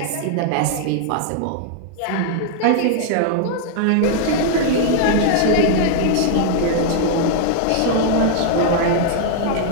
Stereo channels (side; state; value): both; different; correlation -0.01